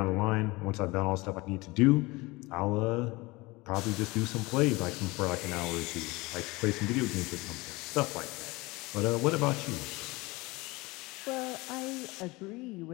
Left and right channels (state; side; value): quieter; right; 23.1 dB